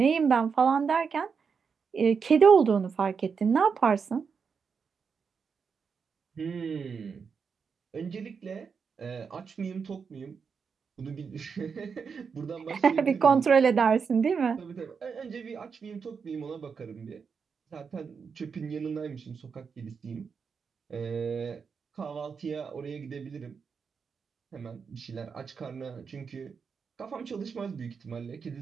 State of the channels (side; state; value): left; quieter; 5.9 dB